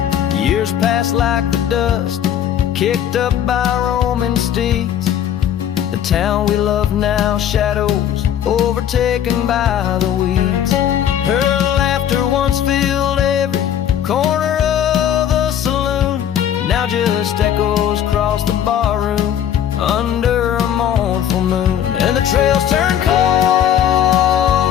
Years passed like the dust kicked up by roaming steeds. The town we love now, shadows overtaken by the weeds. Her laughter once filled every corner of the saloon, now just echoes across the barroom under a mournful moon. And the trails turn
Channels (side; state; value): right; quieter; 10.0 dB